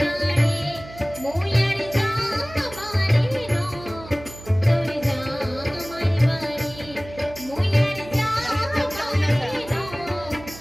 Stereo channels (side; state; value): right; noise; hum, 17 dB below the sound